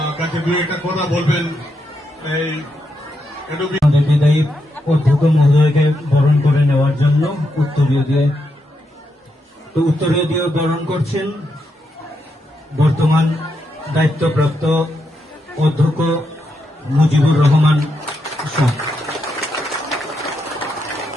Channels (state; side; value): normal; both; correlation 0.82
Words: কাছে দু একটা কথা বলবেন। এই বিদায়ী অধ্যক্ষ মহোদয়কে বরণ করে নেওয়ার জন্য উত্তরীয় দিয়ে বরণ করছেন বর্তমান দায়িত্বপ্রাপ্ত অধ্যক্ষ মুজিবুর রহমান শাহ।